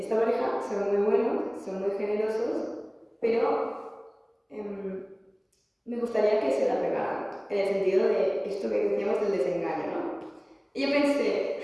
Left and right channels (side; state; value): both; identical; correlation 1.00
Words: pareja son muy buenos, son muy generosos, pero me gustaría que se la pegaran, en el sentido de esto que decíamos del desengaño, ¿no? Y yo pensé,